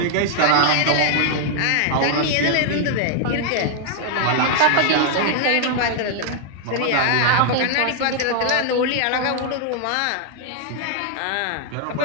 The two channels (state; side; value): different; both; correlation 0.00